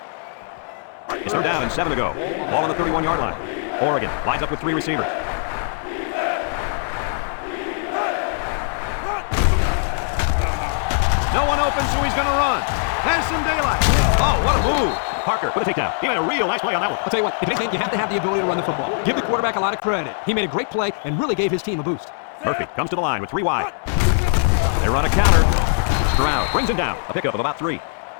It's 3rd down and 7 to go. Ball on the 31-yard line. Oregon lines up with 3 receivers. No one open, so he's going to run. Has some daylight. Oh, what a move. Parker with a takedown. He made a real nice play on that one. I'll tell you what, if anything, you have to have the ability to run the football. Give the quarterback a lot of credit. He made a great play and really gave his team a boost. Murphy comes to the line with 3 wide. They run a counter. Stroud brings him down. A pickup of about 3.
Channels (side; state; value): right; silent; 65 dB below the other